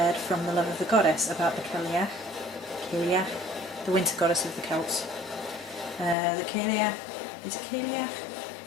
from the love of the goddess about the Cailleach, the winter goddess of the Celts. The Cailleach, is it Cailleach?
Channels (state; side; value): drops out; right; at 6.2 s